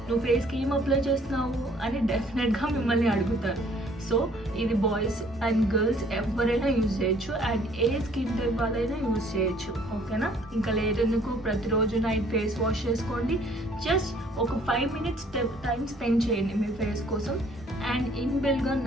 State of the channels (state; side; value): normal; both; correlation 0.59